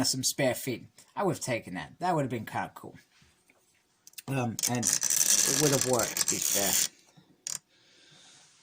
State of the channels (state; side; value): identical; both; correlation 1.00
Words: some spare feet. I would have taken that. That would have been kind of cool. And it would have worked, to be fair.